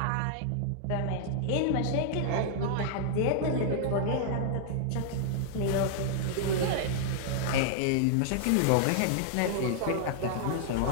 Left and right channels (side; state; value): both; different; correlation -0.01